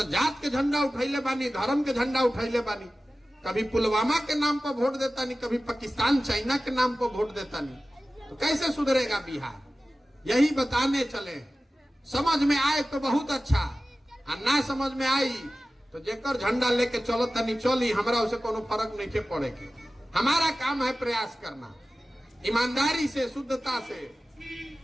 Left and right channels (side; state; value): both; normal; correlation 0.96